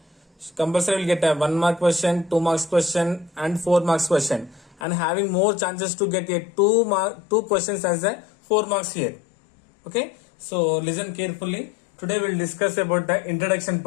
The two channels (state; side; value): drops out; right; at 4.8 s